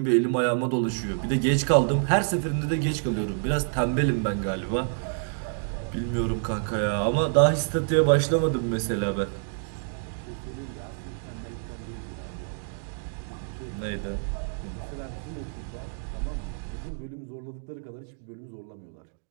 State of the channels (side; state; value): left; silent; digital silence